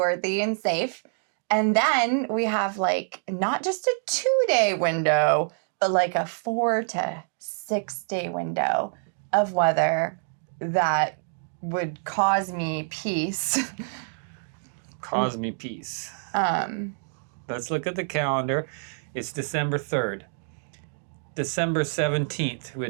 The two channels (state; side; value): silent; left; digital silence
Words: and safe. And then we have like not just a 2-day window, but like a 4 to 6 day window of weather that would cause me peace. Cause me peace. Let's look at the calendar. It's December 3rd. December 17th